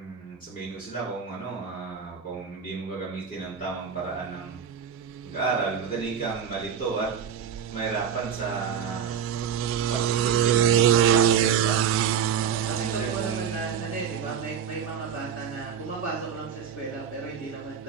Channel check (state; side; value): quieter; left; 7.8 dB